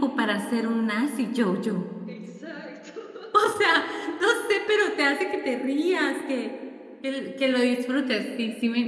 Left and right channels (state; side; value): identical; both; correlation 1.00